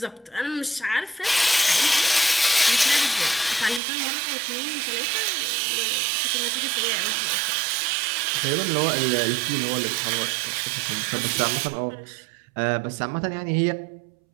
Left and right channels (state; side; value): drops out; left; at 3.8 s